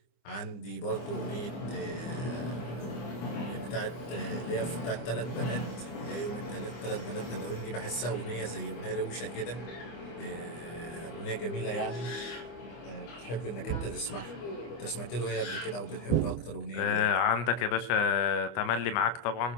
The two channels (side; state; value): right; late; 25 ms